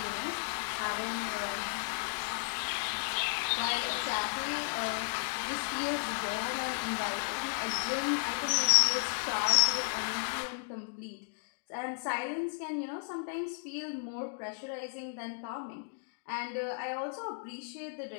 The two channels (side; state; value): right; silent; digital silence